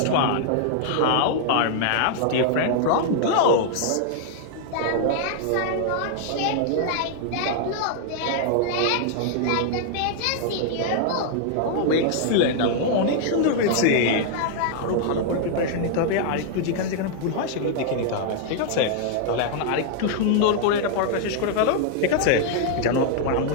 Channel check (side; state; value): both; different; correlation -0.01